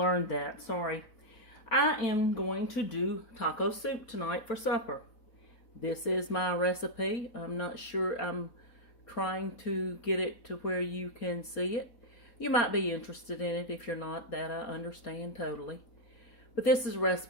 that. Sorry. I am going to do taco soup tonight for supper. This is my recipe. I'm not sure. I'm trying to get it to where you can see it. You might be interested in it. If you're not, that I understand totally. But this is a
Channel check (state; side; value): late; right; 4.0 ms